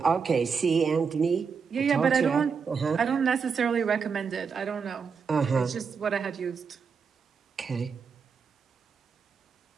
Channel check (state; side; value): quieter; left; 5.8 dB